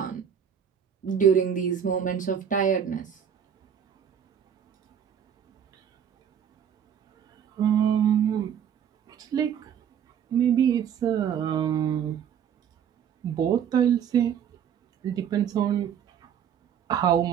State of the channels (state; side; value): quieter; left; 8.5 dB